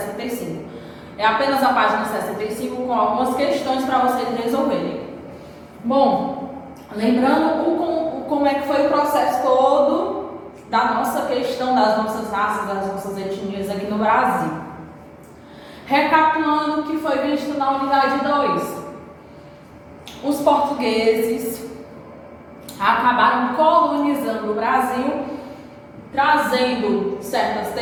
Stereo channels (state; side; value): identical; both; correlation 1.00